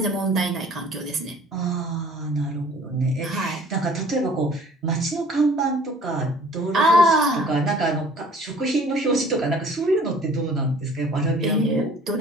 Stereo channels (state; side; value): normal; both; correlation 0.51